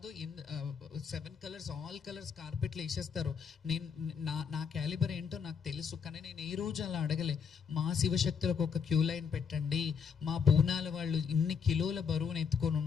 7 కలర్స్ ఆల్ కలర్స్ కార్పెట్లు వేసేస్తారు. నేను నా క్యాలిబర్ ఏంటో నాకు తెలుసు. కానీ నేను ఏ రోజు అలా అడగలే, మా శివశక్తులకు ఒక క్యూ లైన్ పెట్టండి, మా బోనాల వాళ్ళు ఇన్ని కిలోల బరువును ఎత్తుకొని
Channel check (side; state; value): right; quieter; 6.5 dB